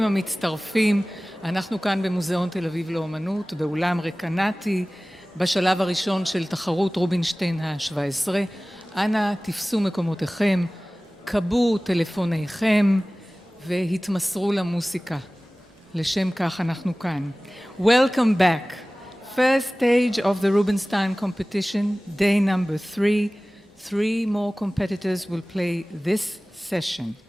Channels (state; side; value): normal; both; correlation 0.98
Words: המצטרפים. אנחנו כאן במוזיאון תל אביב לאומנות, באולם רקנטי, בשלב הראשון של תחרות רובינשטיין ה-17. אנא תפסו מקומותיכם, קבו טלפוניכם והתמסרו למוסיקה. לשם כך אנחנו כאן. Welcome back. First stage of the Rubinstein Competition, day number 3. 3 more competitors will play this session.